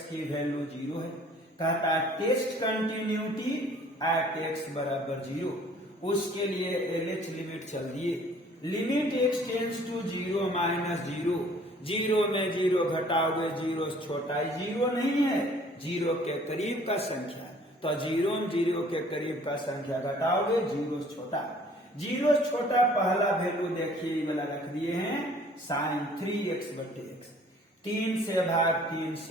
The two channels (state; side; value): normal; both; correlation 0.55